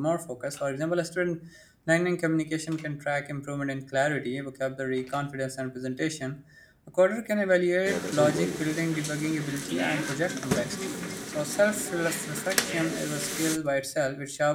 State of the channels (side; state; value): both; identical; correlation 1.00